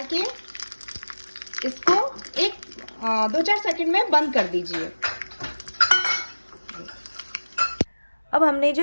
के इसको 2-4 सेकंड में बंद कर दीजिए। अब हमने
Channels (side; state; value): both; inverted; correlation -1.00